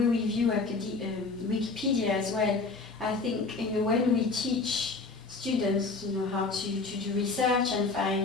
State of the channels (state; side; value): quieter; right; 3.9 dB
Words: we view Wikipedia as well, I think when we teach students how to do research and